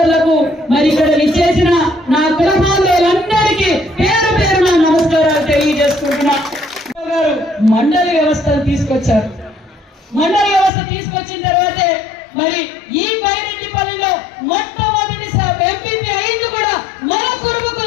మరి ఇక్కడ ఇచ్చేసిన నా కులబాంధవులందరికీ పేరు పేరున నమస్కారాలు తెలియజేసుకుంటున్నా. గారు మండలి వ్యవస్థను తీసుకొచ్చారు. మండలి వ్యవస్థ తీసుకొచ్చిన తర్వాతే మరి ఈ బైరెడ్డిపల్లిలో మొట్టమొదటి ఎంపీపీ అయింది కూడా మన కురుబు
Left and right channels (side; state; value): right; drops out; at 10.7 s